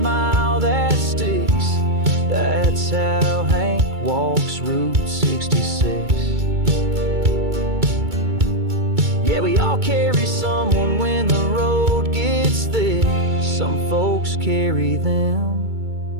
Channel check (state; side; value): late; left; 2.3 ms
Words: that sticks. That's how Hank walks Route 66. Yeah, we all carry someone when the road gets thick. Some folks carry